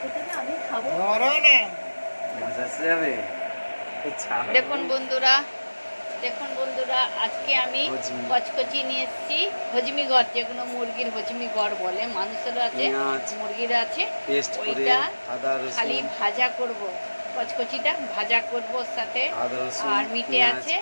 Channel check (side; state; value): both; inverted; correlation -1.00